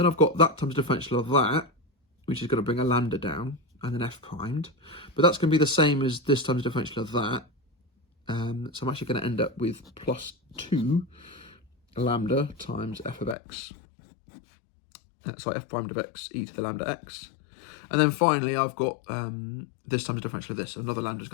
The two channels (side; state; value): right; drops out; at 13.4 s